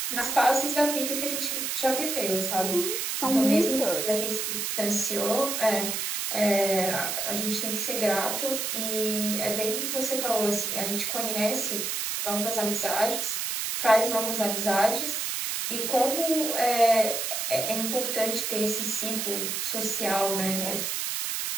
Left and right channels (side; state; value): right; noise; hiss, 1 dB below the sound